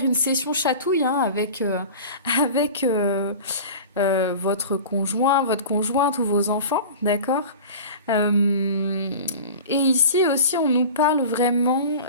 une session chatouille hein, avec votre conjoint, votre conjointe ou vos enfants, d'accord? Euh, et ici aussi, on nous parle vraiment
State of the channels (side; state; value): both; inverted; correlation -0.36